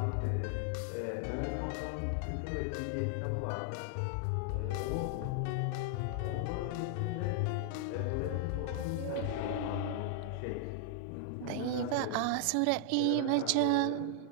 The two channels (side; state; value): both; different; correlation 0.00